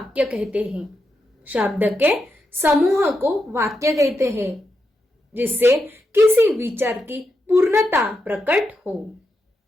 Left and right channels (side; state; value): both; normal; correlation 0.85